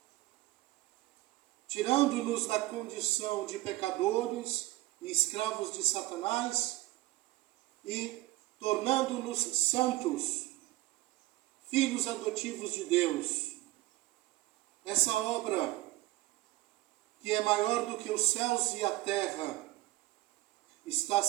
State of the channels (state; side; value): quieter; left; 18.3 dB